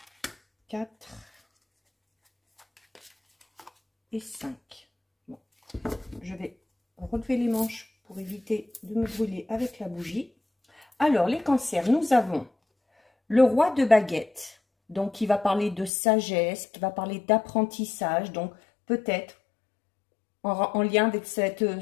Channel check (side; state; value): right; drops out; at 15.9 s